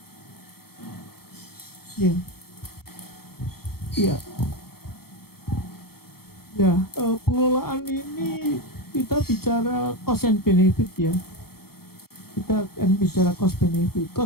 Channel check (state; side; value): late; right; 0.94 ms